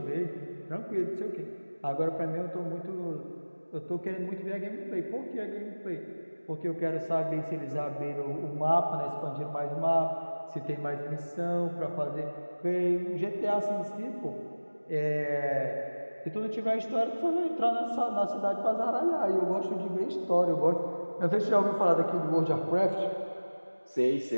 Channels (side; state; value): both; inverted; correlation -1.00